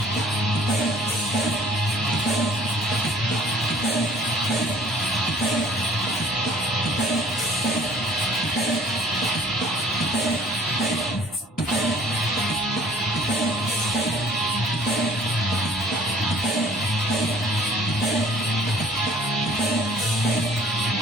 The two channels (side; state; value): both; normal; correlation 0.54